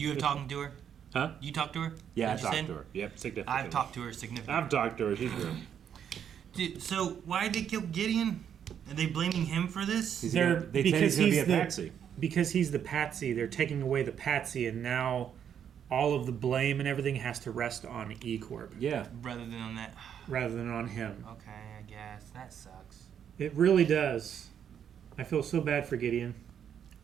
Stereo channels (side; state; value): left; quieter; 8.6 dB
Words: have talked to her? Huh? You talked to her? Yeah, I Is that what you talked to said? her. Yep, significantly. I've talked to her significantly. I've talked to her. She's real. Dude, so why did they kill Gideon? Are they blaming him for this? They said he's gonna be a patsy. Because he's the patsy, they're taking away the patsy, and now all of the blame and everything has to rest on E Corp Yeah. Rather than on that. rather than on him. Okay, I guess. That sucks. It really does. I feel so bad for Gideon.